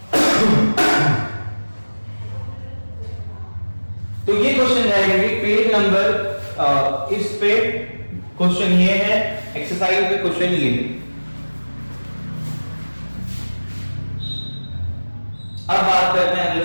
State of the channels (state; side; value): inverted; both; correlation -1.00